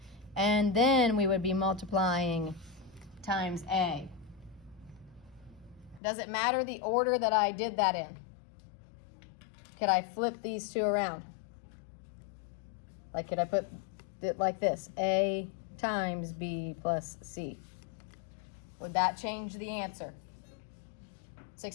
and then we would be multiplying times A. Does it matter the order that I did that in? Could I flip these two around? Like, could I put it like this? A times B plus C. Would that change the answer?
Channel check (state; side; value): drops out; right; at 6.0 s